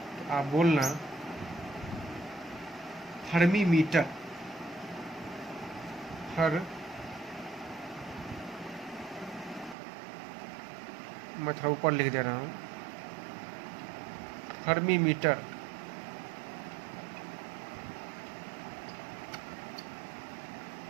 तो आप बोलना हर्मी मीटर। मैं थोड़ा ऊपर लिख दे रहा हूँ, fermi metre.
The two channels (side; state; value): left; drops out; at 9.8 s